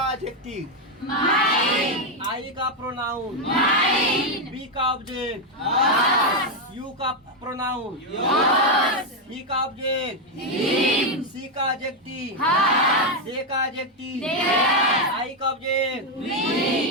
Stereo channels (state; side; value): normal; both; correlation 0.04